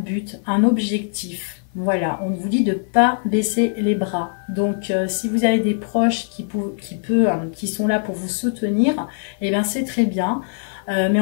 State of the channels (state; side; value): silent; right; 56 dB below the other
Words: un objectif. Voilà, on vous dit de ne pas baisser les bras. Donc, si vous avez des proches qui sont là pour vous soutenir, eh bien c'est très bien. Mais